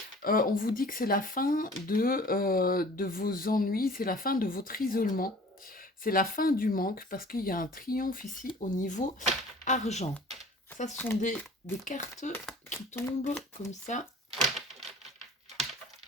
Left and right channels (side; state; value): both; normal; correlation 0.46